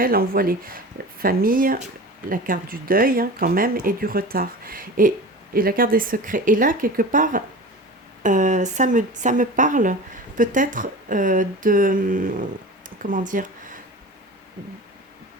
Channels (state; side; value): normal; both; correlation 0.34